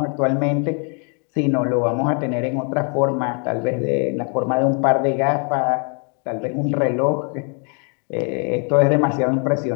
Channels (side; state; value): right; quieter; 39.7 dB